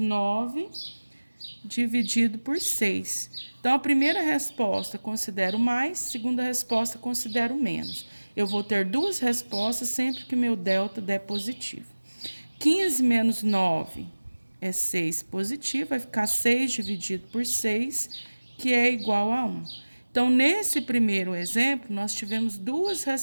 dividido por 6. Então, a primeira resposta considero mais, segunda resposta considero menos. Eu vou ter duas respostas sempre que meu delta der positivo. 15 menos 9 é 6 positivo, vai ficar 6 dividido por 6, que é igual a 1. Então, nesse primeiro exemplo, nós tivemos duas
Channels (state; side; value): inverted; both; correlation -1.00